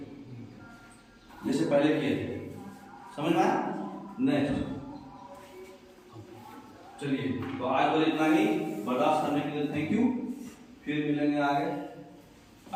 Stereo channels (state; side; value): identical; both; correlation 1.00